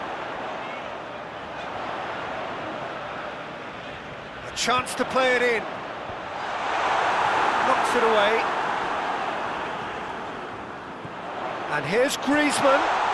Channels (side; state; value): both; identical; correlation 1.00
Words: A chance to play it in. Knocks it away. And here's Griezmann.